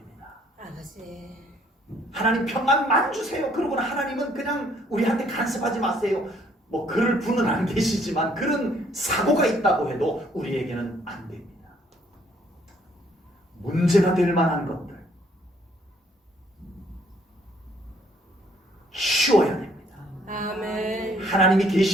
아버지. 하나님 평안만 주세요. 그러고는 하나님은 그냥 우리한테 간섭하지 마세요. 뭐 그럴 분은 안 계시지만 그런 사고가 있다고 해도 우리에게는 안 됩니다. 문제가 될 만한 것들 쉬워야 됩니다. 아멘. 하나님이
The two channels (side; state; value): both; normal; correlation 0.65